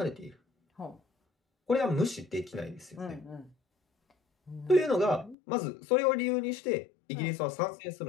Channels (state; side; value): drops out; right; at 5.4 s